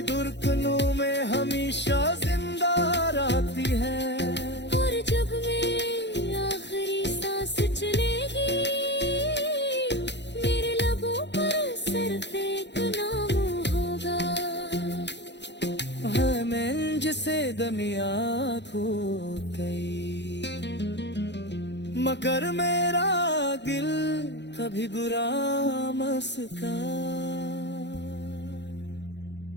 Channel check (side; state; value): right; late; 0.51 ms